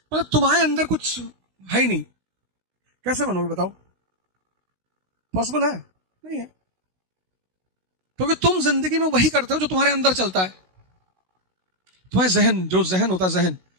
मतलब तुम्हारे अंदर कुछ है ही नहीं, कैसे बनोगे बताओ? पॉसिबल है? नहीं है। क्योंकि तुम जिंदगी में वही करते हो जो तुम्हारे अंदर चलता है। तुम्हारे जहन, जो जहन होता है, जहन,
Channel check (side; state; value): left; late; 16 ms